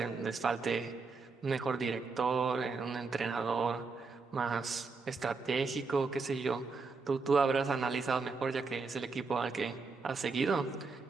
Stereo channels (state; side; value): quieter; left; 4.4 dB